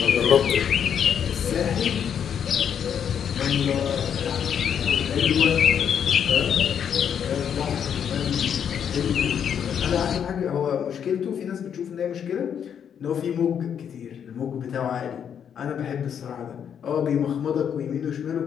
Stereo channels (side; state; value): right; quieter; 8.2 dB